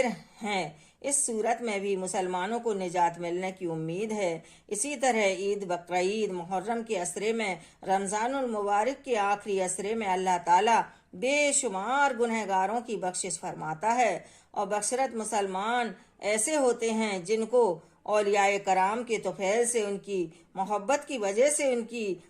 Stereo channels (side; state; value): both; identical; correlation 1.00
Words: ہیں۔ اس صورت میں بھی مسلمانوں کو نجات ملنے کی امید ہے۔ اسی طرح عید، بقرعید، محرم کے عشرے میں، رمضان المبارک کے آخری عشرے میں اللہ تعالیٰ بے شمار گنہگاروں کی بخشش فرماتا ہے، اور بشرط مسلمان ایسے ہوتے ہیں جن کو اولیاء کرام کے طفیل سے، ان کی محبت کی وجہ سے، ان کی